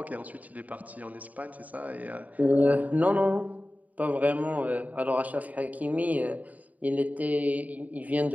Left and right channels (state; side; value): late; left; 0.074 ms